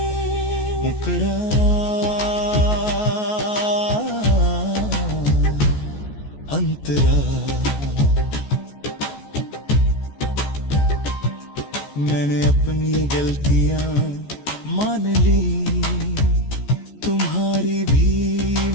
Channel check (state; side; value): late; right; 14 ms